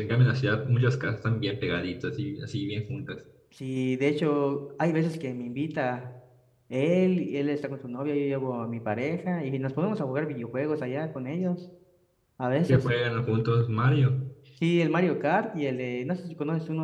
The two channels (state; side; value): identical; both; correlation 1.00